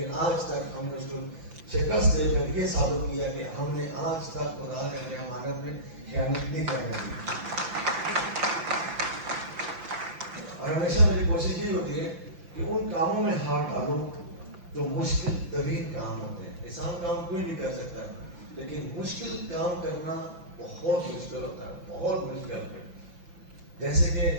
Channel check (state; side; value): late; left; 5.9 ms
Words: آج تک ہم نے اس کو شکست دے کر یہ ثابت کیا کہ ہم نے آج تک خدا کے امانت میں خیانت نہیں کرنے دی. اور ہمیشہ میری کوشش یہ ہوتی ہے کہ ان کاموں میں ہاتھ ڈالوں جو مشکل ترین کام ہوتے ہیں. آسان کام کوئی بھی کر سکتا ہے, لیکن مشکل کام کرنا بہت مشکل ہوتا ہے, بہت مشکل ہے. جیسے کہ